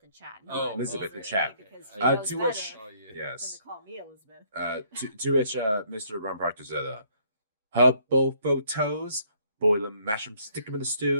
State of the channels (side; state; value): both; inverted; correlation -0.65